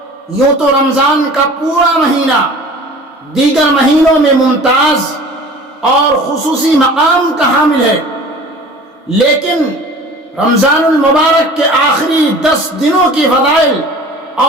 یوں تو رمضان کا پورا مہینہ دیگر مہینوں میں ممتاز اور خصوصی مقام کا حامل ہے، لیکن رمضان المبارک کے آخری 10 دنوں کی فضائل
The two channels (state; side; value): normal; both; correlation 0.43